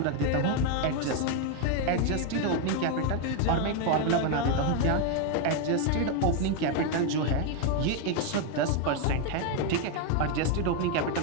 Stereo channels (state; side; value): different; both; correlation 0.01